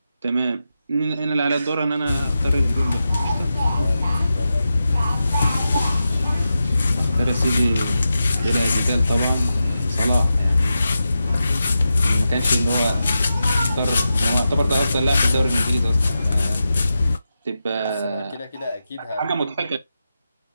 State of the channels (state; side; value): inverted; both; correlation -0.90